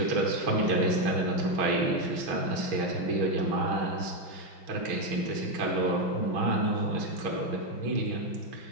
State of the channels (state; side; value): late; left; 6.3 ms